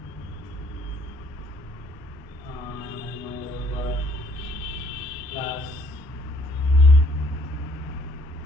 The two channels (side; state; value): both; normal; correlation 0.64